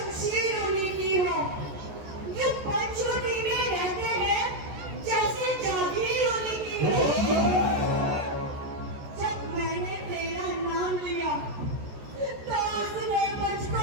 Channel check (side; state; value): left; late; 14 ms